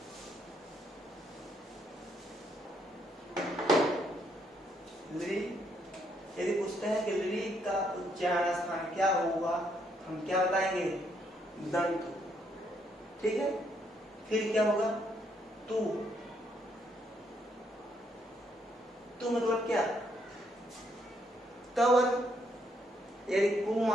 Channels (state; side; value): normal; both; correlation 0.73